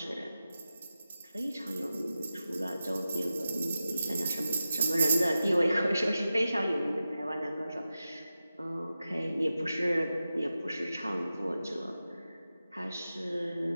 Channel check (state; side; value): inverted; both; correlation -0.92